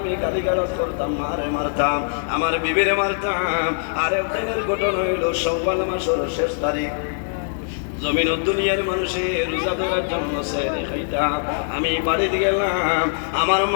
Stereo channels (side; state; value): right; silent; 64 dB below the other